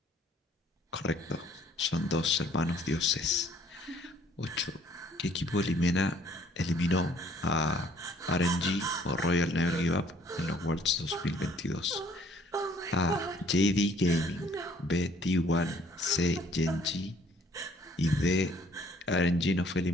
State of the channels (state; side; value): normal; both; correlation 0.59